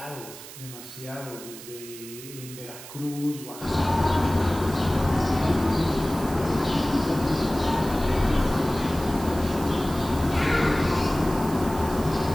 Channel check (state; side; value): noise; right; hiss, 15 dB below the sound